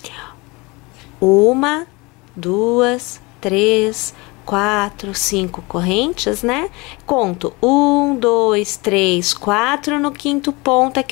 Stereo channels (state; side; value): quieter; right; 25.3 dB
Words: ó. 1, 2, 3, 4, 5 correntes, né? Conto 1, 2, 3, 4. No quinto ponto é